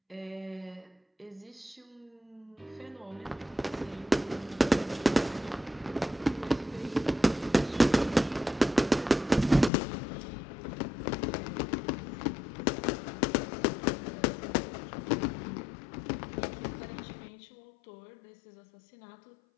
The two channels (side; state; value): right; drops out; at 9.7 s